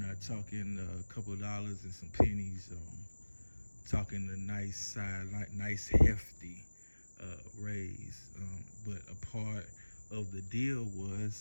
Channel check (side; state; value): both; inverted; correlation -1.00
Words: talking a couple of dollars and some pennies. Talking a nice hefty raise. But a part of the deal